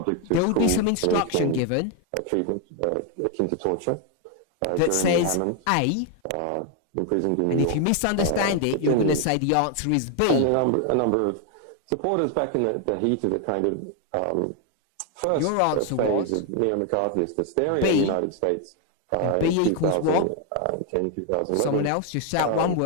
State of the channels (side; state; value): both; different; correlation 0.01